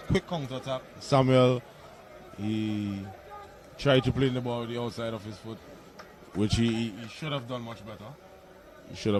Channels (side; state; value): both; identical; correlation 1.00